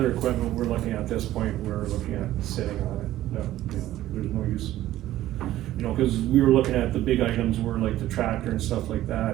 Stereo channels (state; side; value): quieter; left; 14.3 dB